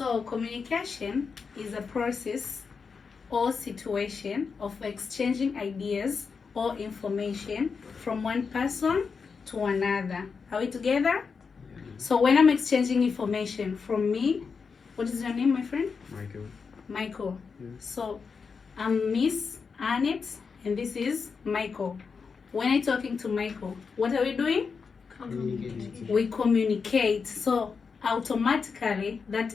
communication is a process or situation of exchanging ideas or information from one person to another. Are we together? So when I'm exchanging information from me, what is your name, my friend? Michael. Yes. So I'm Miss Aneth, and this is Michael. When I'm talking to Michael, what are we doing? Communicating. We communicate. So automatically that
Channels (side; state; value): right; quieter; 5.4 dB